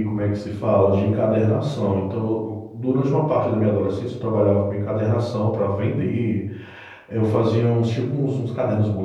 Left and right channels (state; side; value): identical; both; correlation 1.00